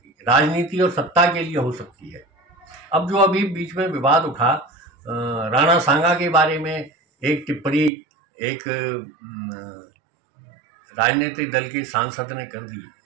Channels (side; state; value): left; drops out; at 7.9 s